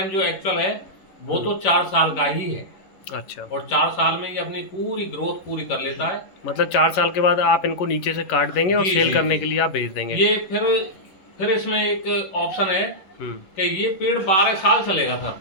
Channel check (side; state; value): right; late; 11 ms